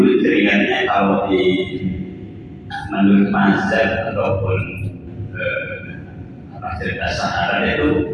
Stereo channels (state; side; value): identical; both; correlation 1.00